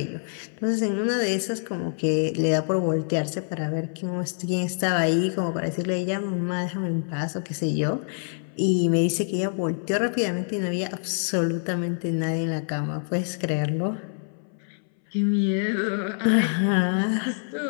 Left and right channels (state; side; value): silent; right; 59 dB below the other